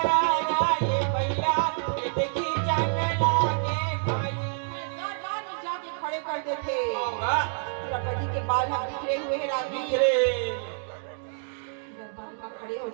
द्रौपदी के बाल हम बिखरे हुए हैं रानी दरबार का खड़े हो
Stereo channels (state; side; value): silent; left; digital silence